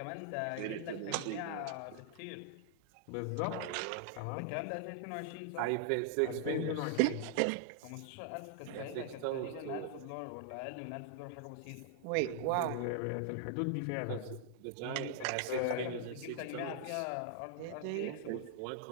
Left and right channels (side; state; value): both; different; correlation -0.01